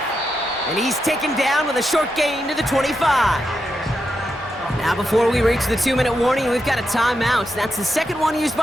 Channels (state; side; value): normal; both; correlation 0.85